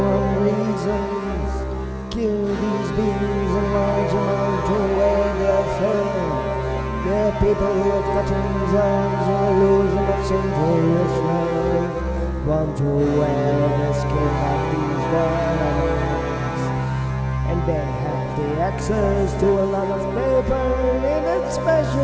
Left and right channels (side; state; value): both; identical; correlation 1.00